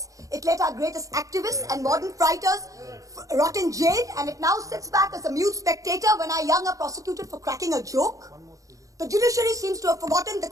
it let our greatest activists and modern fighters rot in jail, and it now sits back as a mute spectator when our young are prosecuted for cracking a joke. The judiciary seems to have forgotten the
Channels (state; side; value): late; left; 0.16 ms